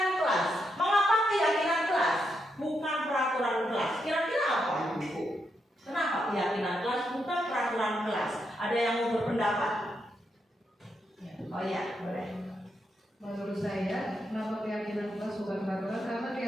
kelas. Mengapa keyakinan kelas bukan peraturan kelas? Kira-kira apa Ibu? Kenapa keyakinan kelas bukan peraturan kelas? Ada yang mau berpendapat? Oh ya, boleh. Menurut saya, kenapa keyakinan kelas bukan peraturan? Karena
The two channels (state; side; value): normal; both; correlation 0.82